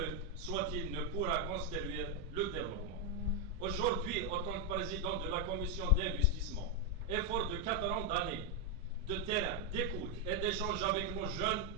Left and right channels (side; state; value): both; normal; correlation 0.02